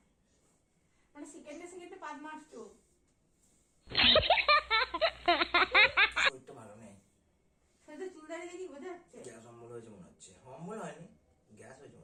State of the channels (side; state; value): both; identical; correlation 1.00